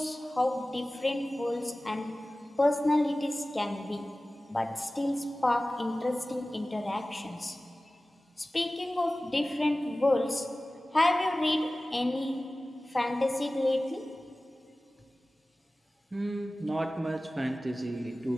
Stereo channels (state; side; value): normal; both; correlation 0.97